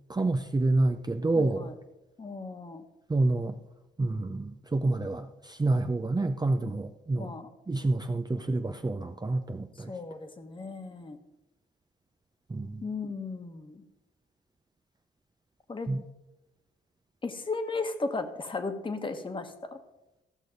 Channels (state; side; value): normal; both; correlation 0.90